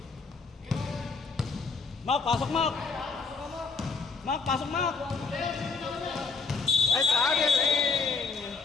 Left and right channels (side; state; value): right; quieter; 4.5 dB